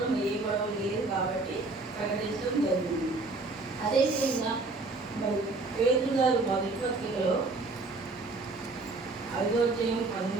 ఏ గొడవ లేదు కాబట్టి ప్రకటించడం జరిగింది. అదేవిధంగా మరి పేదలు గారు మొదటి పత్రికలో 5వ అధ్యాయం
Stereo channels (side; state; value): left; quieter; 3.4 dB